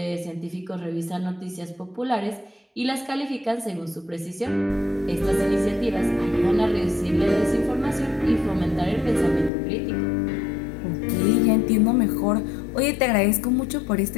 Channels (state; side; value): drops out; right; at 9.5 s